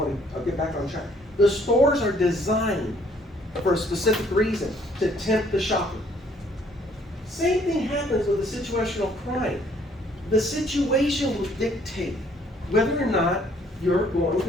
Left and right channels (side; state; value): both; normal; correlation 0.63